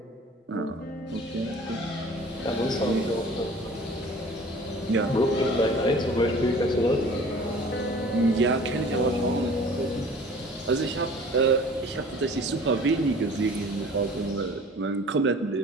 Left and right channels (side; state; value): both; normal; correlation 0.47